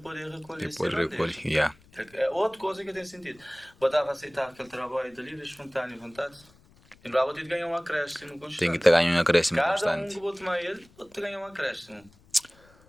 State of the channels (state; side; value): noise; left; rumble, 28 dB below the sound